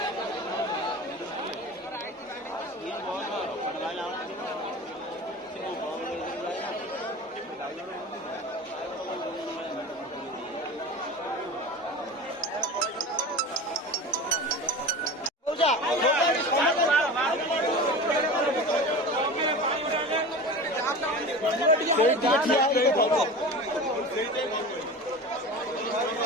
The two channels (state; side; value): normal; both; correlation 0.32